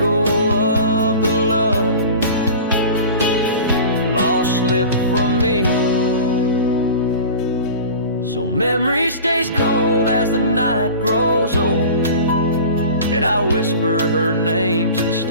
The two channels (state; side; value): inverted; both; correlation -0.38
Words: of the love lost slipped from me. So memory stays cold as the night grows old, and I whisper her name to the